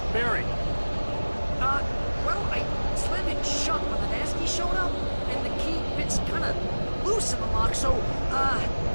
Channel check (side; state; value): both; inverted; correlation -1.00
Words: Barry. Well, I slammed it shut when the nasty showed up, and the key fits kind of loose in the lock, so, Barry!